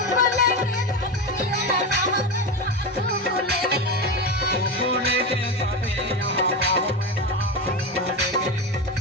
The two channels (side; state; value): both; normal; correlation 0.18